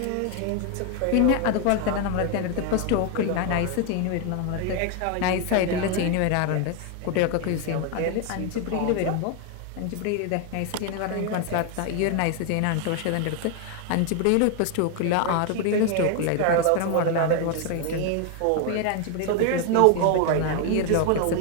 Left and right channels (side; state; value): both; different; correlation 0.01